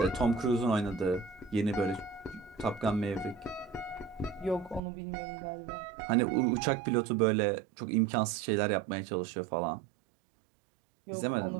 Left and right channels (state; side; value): drops out; left; at 4.8 s